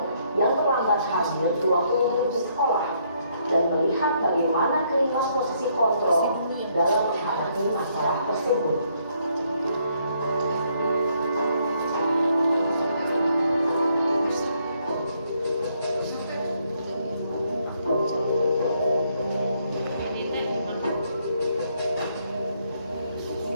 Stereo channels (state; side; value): inverted; both; correlation -0.71